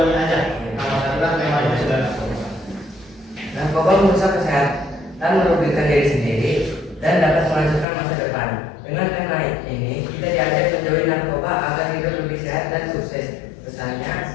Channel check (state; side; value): drops out; right; at 7.9 s